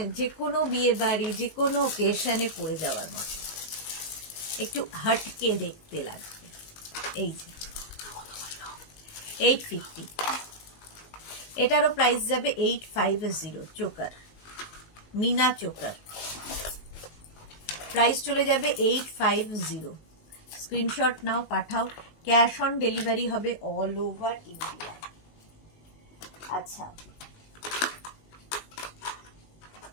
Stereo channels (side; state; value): right; late; 19 ms